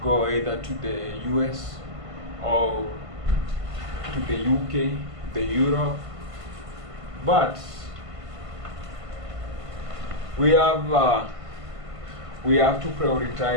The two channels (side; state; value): left; late; 1.5 ms